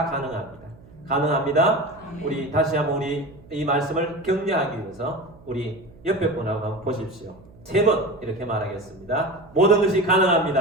가능합니다. 가능합니다. 우리 다시 한번 우리 이 말씀을 격려하기 위해서 우리 옆에 분하고 한번 보십시오. 3번 이렇게 말하겠습니다. 모든 것이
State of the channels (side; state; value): right; noise; hum, 23 dB below the sound